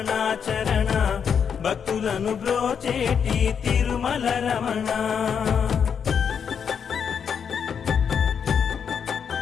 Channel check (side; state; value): right; quieter; 7.2 dB